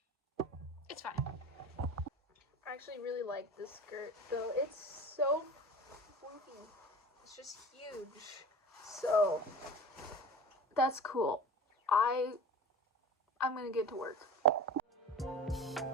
It's fine. I actually really like this skirt though. It's so floofy. It's just huge. So that's cool. I'm gonna get to work.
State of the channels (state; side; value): normal; both; correlation 0.36